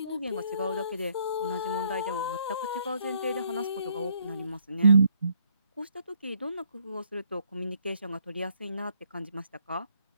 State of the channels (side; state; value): both; inverted; correlation -0.69